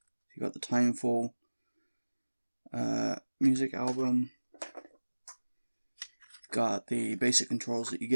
You got the Timefall music album. Got the basic controls that you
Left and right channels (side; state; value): both; inverted; correlation -1.00